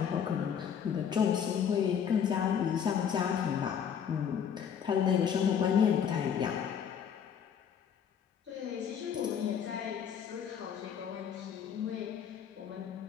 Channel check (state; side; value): quieter; right; 8.0 dB